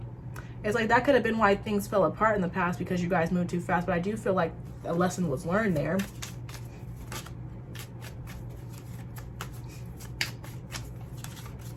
It's like that could have been why things fell apart in the past because you guys moved too fast, but I do feel like a lesson was learned there.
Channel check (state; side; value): identical; both; correlation 1.00